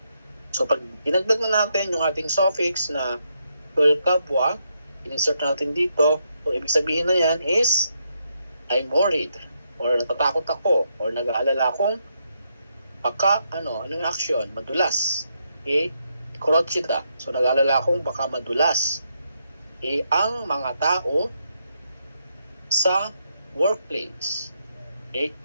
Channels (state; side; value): inverted; both; correlation -0.79